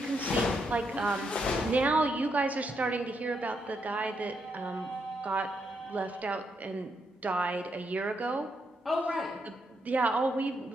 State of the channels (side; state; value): both; normal; correlation 0.79